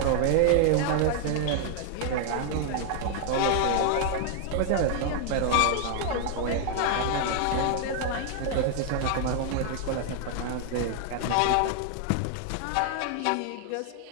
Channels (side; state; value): both; different; correlation 0.00